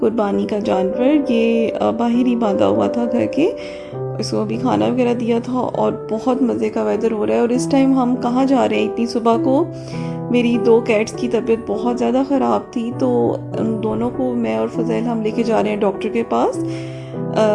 का जानवर। ये बाहर ही बांधा हुआ था घर के, इसको अभी खाना वगैरह दिया था और बहुत मज़े का वेदर हो रहा है। और इस टाइम हम कहाँ जा रहे हैं इतनी सुबह को? मेरी दो कैट्स की तबीयत बहुत ज़्यादा ख़राब थी, तो उन दोनों को मैं और फज़ैल हम लेके जा रहे हैं डॉक्टर के पास।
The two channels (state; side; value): identical; both; correlation 1.00